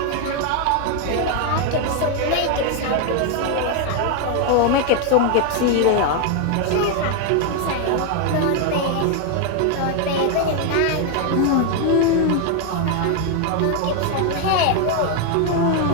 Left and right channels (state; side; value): different; both; correlation 0.01